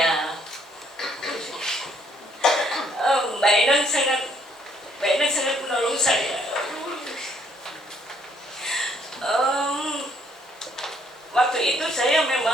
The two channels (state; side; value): normal; both; correlation 0.67